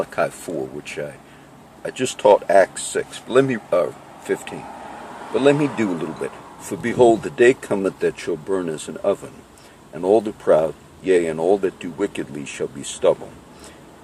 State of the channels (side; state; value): both; identical; correlation 1.00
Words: 4, which I just taught Acts 6. But let me 15. But let me do a little bit. For behold, the day cometh that shall burn as an oven, and all the proud, yea, and all that do wickedly shall be stubble.